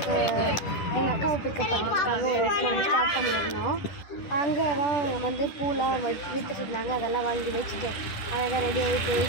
எங்கள் அக்காவை பிக்கப் பண்ணுறதுக்காக ஒரு இடத்துல வந்து ஸ்டார்ட் பண்ணியிருந்தோம். அங்கே தான் வந்து பூலாம் விற்றுட்டு இருந்தாங்க. அதெல்லாம் வாங்கி வச்சுட்டு அழகாக ரெடி ஆகிட்டு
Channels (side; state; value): right; late; 10 ms